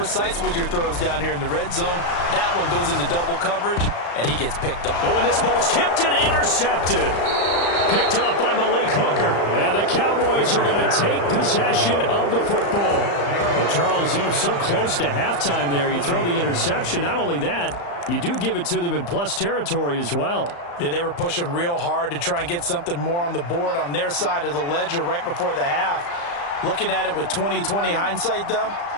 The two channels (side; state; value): right; late; 35 ms